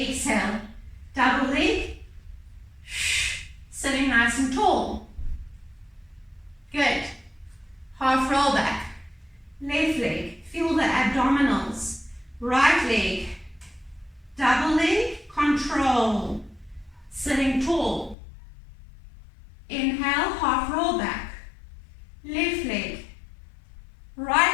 Double leg. Sitting nice and tall. Good. Half roll back. Left leg. Feel the abdominals. Right leg. Double leg. Control. Sitting tall. Inhale, half roll back. Left leg.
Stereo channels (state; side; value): drops out; right; at 18.2 s